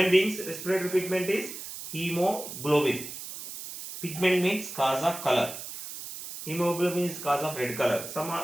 beings, respiratory pigment is hemoglobin. Pigment means cause of color. Hemoglobin is cause of red color. Some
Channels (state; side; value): noise; right; hiss, 10 dB below the sound